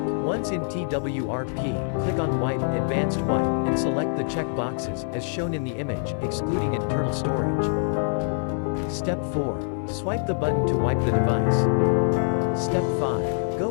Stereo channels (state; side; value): silent; right; digital silence